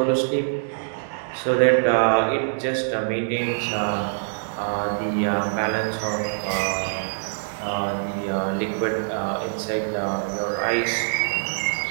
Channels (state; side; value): silent; left; digital silence